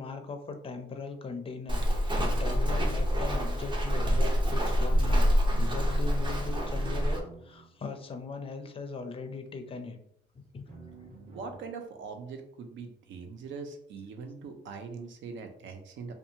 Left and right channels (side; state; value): both; normal; correlation 0.88